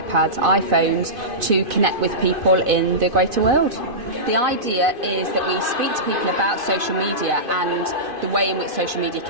iPhones to connect with people in the greater world. The idea is that we speak to people about social media and the way in which social media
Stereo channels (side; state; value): left; late; 2.5 ms